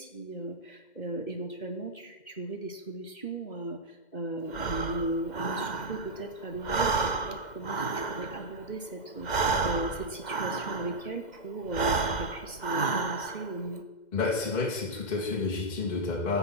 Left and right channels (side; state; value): right; late; 2.1 ms